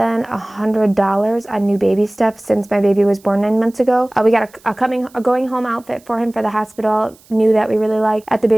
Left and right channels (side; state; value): right; noise; hiss, 29 dB below the sound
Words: $100 on new baby stuff since my baby was born 9 months ago. We got a going home outfit for him for the hospital, new that we really liked at the